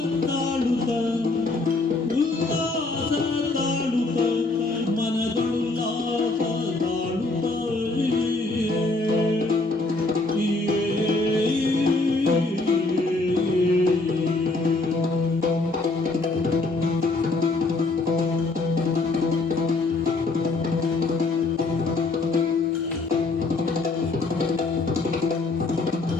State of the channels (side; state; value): right; quieter; 3.3 dB